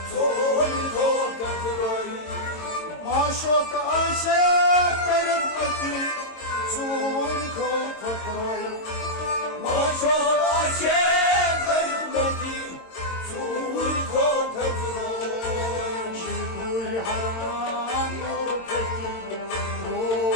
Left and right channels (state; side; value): late; right; 22 ms